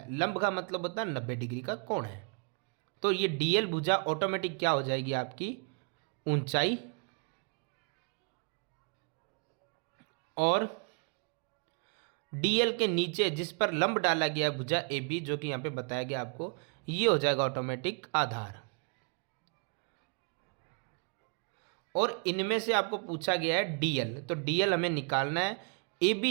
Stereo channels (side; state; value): left; quieter; 38.4 dB